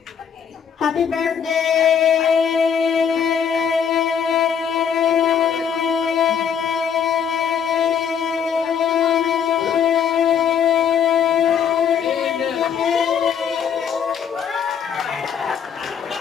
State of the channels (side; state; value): right; quieter; 7.7 dB